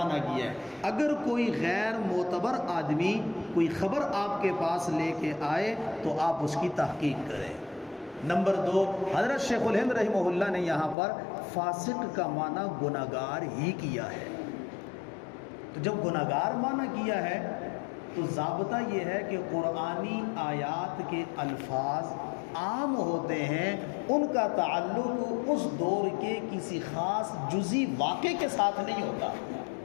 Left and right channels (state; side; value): drops out; right; at 11.0 s